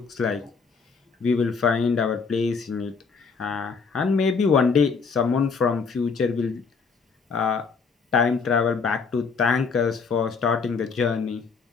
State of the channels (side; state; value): right; quieter; 5.2 dB